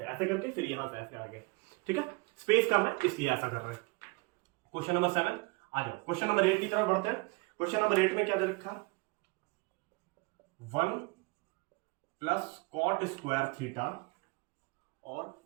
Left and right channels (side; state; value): left; quieter; 26.9 dB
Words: ऐसे करके फिर यहां से ऐसे आ गए, ठीक है। स्पेस कम है इसलिए ऐसा कर रहे हैं। क्वेश्चन नंबर 7 आ जाओ, क्वेश्चन नंबर 8 की तरफ बढ़ते हैं। क्वेश्चन नंबर 8 में क्या दे रखा 1 प्लस कॉट स्क्वायर थीटा, और